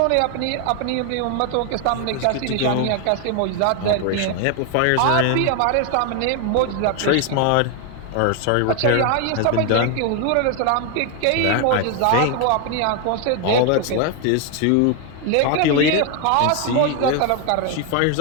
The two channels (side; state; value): both; different; correlation 0.01